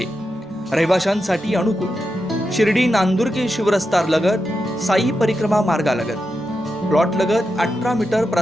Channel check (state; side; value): normal; both; correlation 0.88